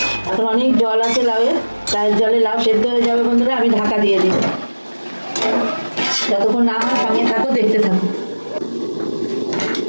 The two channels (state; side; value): inverted; both; correlation -1.00